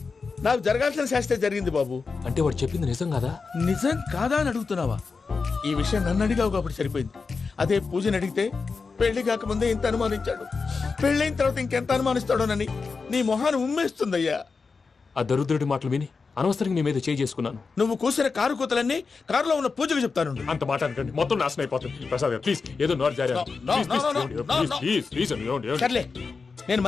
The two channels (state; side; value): quieter; right; 4.7 dB